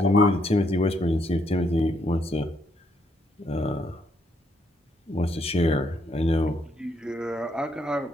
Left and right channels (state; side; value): normal; both; correlation 0.73